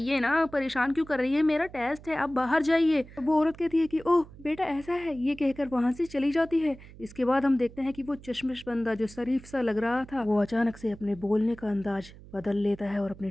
ना, परेशान क्यों कर रही है, मेरा टेस्ट है, आप बाहर जाइए। तो वो औरत कहती है कि ओह बेटा ऐसा है, ये कहकर वहां से चली जाती है। इसके बाद हम देखते हैं कि वो चश्मिश बंदा जो शरीफ सा लग रहा था वो अचानक से अपने बोलने का अंदाज बदल लेता है और अपने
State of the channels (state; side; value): noise; right; hum, 19 dB below the sound